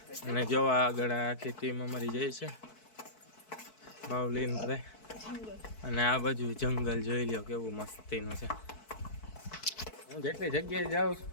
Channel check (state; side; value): late; right; 4.6 ms